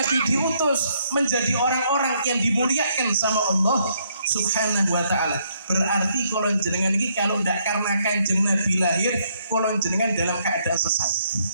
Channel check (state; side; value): inverted; both; correlation -0.71